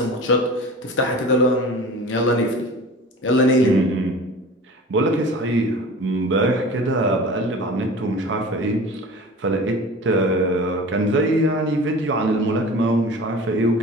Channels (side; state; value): both; normal; correlation 0.38